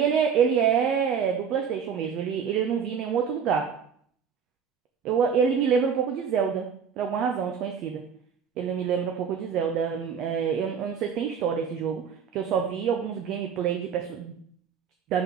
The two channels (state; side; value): quieter; left; 7.0 dB